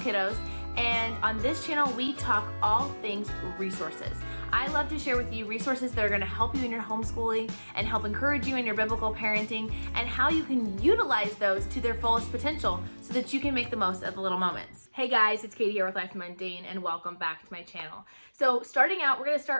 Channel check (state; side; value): inverted; both; correlation -1.00